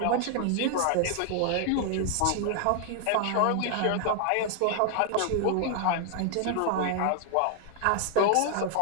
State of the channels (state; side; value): different; both; correlation 0.00